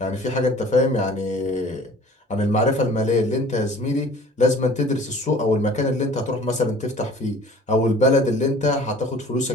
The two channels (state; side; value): normal; both; correlation 0.48